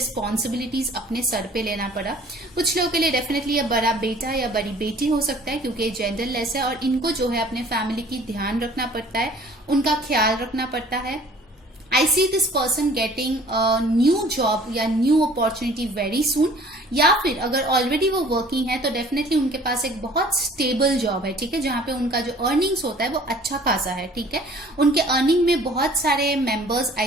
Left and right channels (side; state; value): both; normal; correlation 0.52